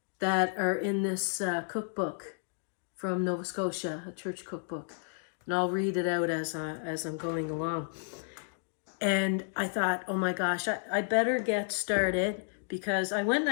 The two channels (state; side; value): silent; right; digital silence